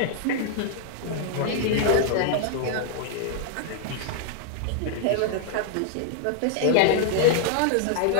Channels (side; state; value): both; different; correlation 0.00